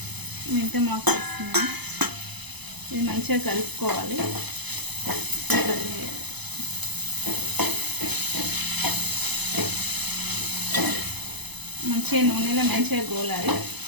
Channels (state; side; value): late; left; 0.99 ms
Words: మెంతం ఆకు వేస్తున్నాను. ఇది మంచిగా కలుపుకోవాలి. మంచిగా నూనెలో మంచిగా గోలాలి.